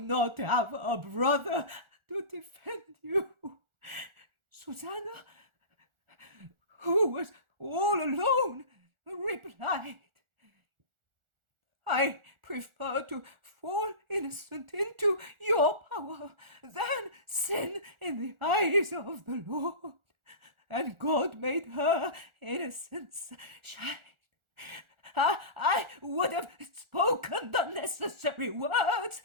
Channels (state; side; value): late; left; 1.4 ms